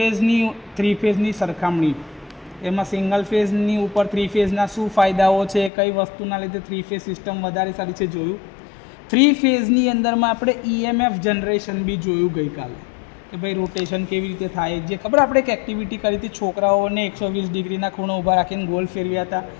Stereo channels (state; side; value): drops out; right; at 5.7 s